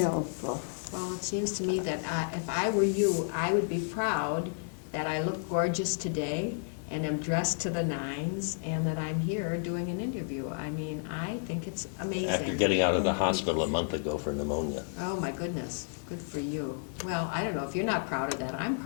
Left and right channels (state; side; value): silent; right; digital silence